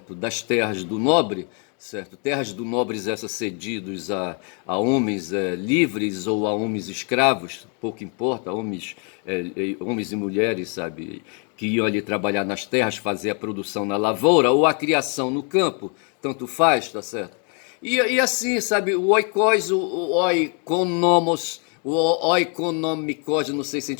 das terras do nobre, certo, terras do nobres essas cedidos a homens livres ou a homens escravos, pouco importa, homens e mulheres, sabe, que iam ali trabalhar nas terras, fazer a produção na lavoura ou a criação no campo, tanto faz, tá certo? E assim, sabe, o oikos, o oikonomos, o oikonomikos, não sei se a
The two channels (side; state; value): right; quieter; 38.7 dB